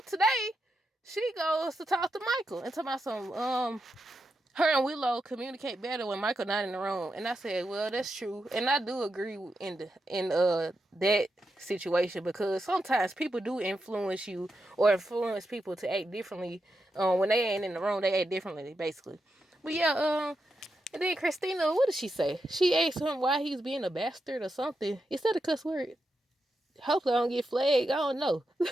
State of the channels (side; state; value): both; normal; correlation 0.86